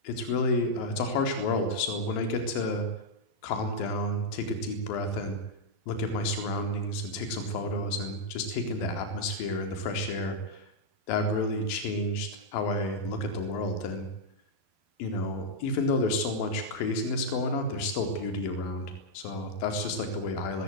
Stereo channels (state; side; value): late; right; 12 ms